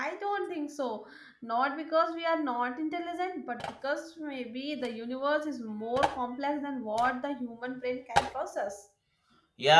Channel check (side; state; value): both; identical; correlation 1.00